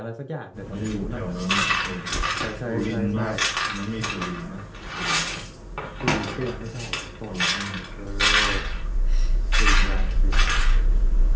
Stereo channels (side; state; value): both; identical; correlation 1.00